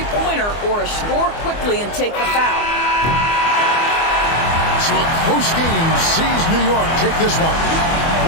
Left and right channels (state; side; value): late; right; 24 ms